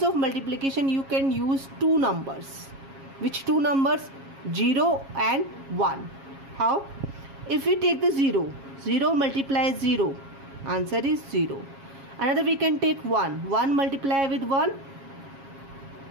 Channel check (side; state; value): left; late; 7.3 ms